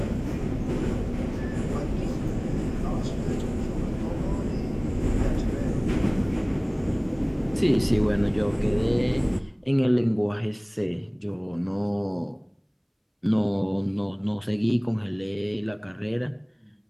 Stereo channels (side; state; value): both; identical; correlation 1.00